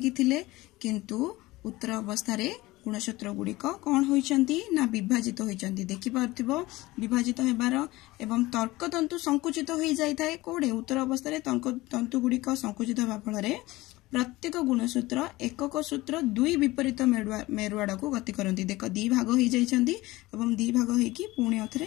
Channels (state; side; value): quieter; right; 19.4 dB